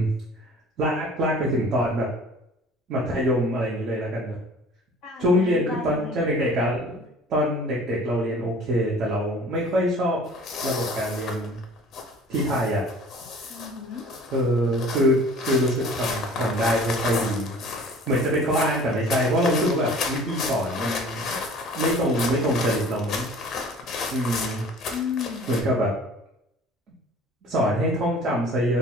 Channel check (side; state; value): both; normal; correlation 0.47